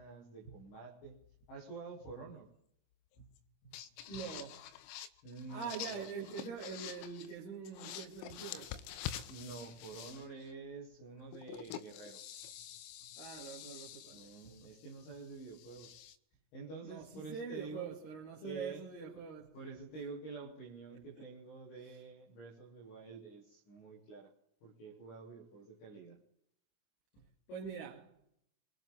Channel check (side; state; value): right; late; 26 ms